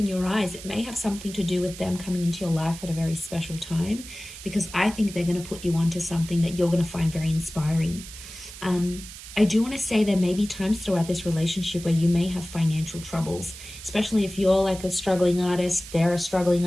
your eyes. It may have something to do with them coming into your life at a very special time, because I think they're going to put you onto something that you're going to find very inspiring. I do want to say there may be times throughout this relationship where you may have financial troubles, especially if you're like a struggling artist, they're a struggling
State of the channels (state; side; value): noise; right; hiss, 14 dB below the sound